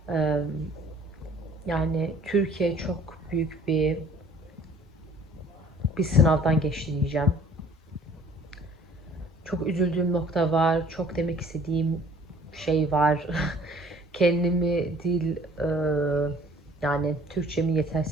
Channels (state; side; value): normal; both; correlation 0.53